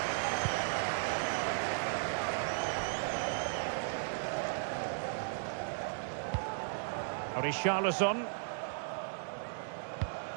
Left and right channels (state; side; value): silent; left; digital silence